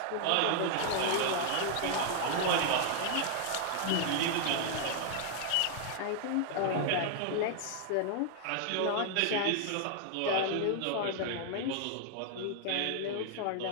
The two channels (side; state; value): both; different; correlation 0.00